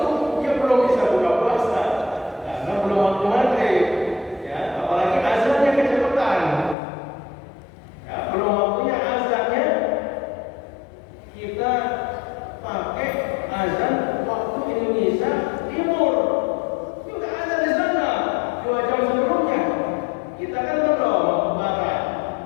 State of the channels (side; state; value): right; drops out; at 6.8 s